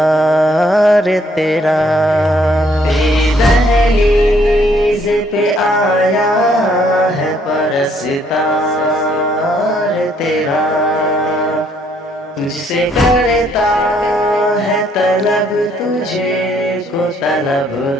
تیرا۔ تیری دہلیز پہ آیا ہے پرستار تیرا، تجھ سے کرتا ہے طلب، تجھے کو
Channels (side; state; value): both; normal; correlation 0.67